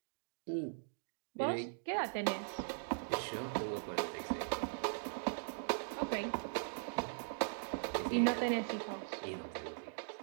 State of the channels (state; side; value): silent; left; digital silence